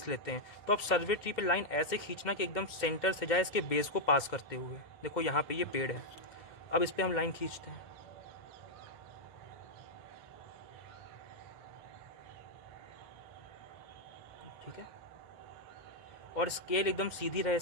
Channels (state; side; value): late; right; 2.0 ms